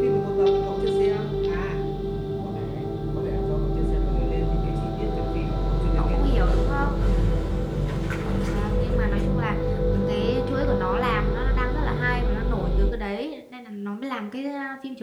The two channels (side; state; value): both; identical; correlation 1.00